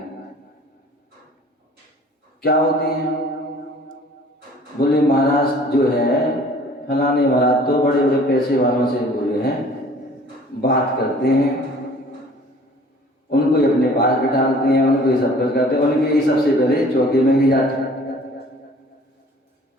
क्या होती है? बोले महाराज जो है फलाने महाराज तो बड़े बड़े पैसे वालों से बोले हैं, बात करते हैं, उनको ही अपने पास बिठाते हैं, उनको ही सब कुछ करते हैं, उनके ही सबसे पहले चौके में भी जाते हैं।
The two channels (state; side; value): normal; both; correlation 0.51